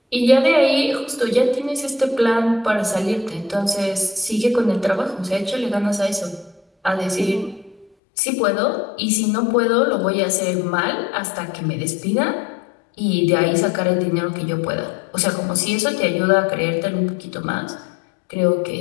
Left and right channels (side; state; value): right; drops out; at 7.9 s